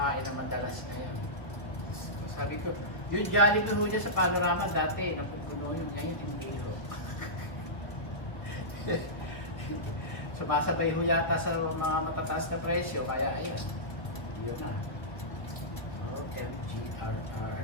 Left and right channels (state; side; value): late; right; 1.2 ms